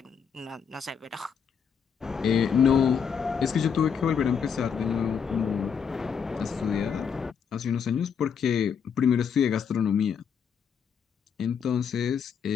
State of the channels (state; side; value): quieter; right; 7.0 dB